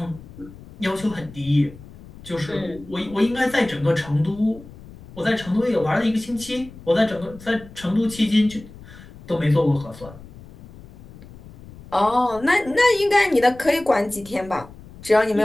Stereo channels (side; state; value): left; noise; rumble, 19 dB below the sound